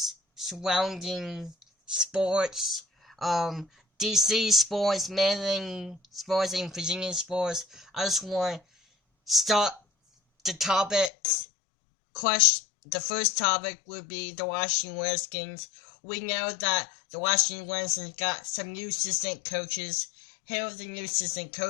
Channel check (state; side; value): drops out; right; at 11.1 s